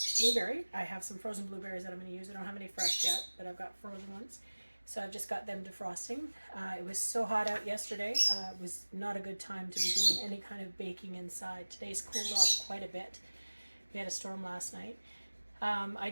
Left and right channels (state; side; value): inverted; both; correlation -1.00